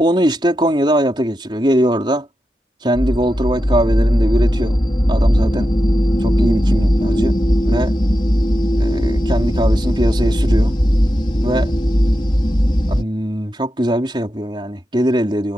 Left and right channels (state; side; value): normal; both; correlation 0.89